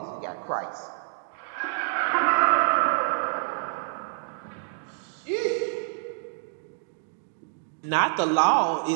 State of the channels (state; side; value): silent; left; 60 dB below the other